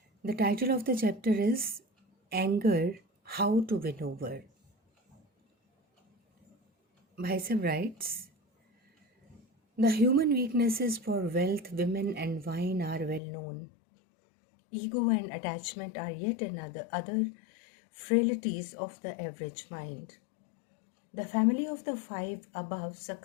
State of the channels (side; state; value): right; drops out; at 13.2 s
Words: The title of the chapter is Anger, How to Win Over. Bhaisa writes, the human weaknesses for wealth, women and wine are well known. Ego and attachment are yet another other frailties of the average mind. The family of the five above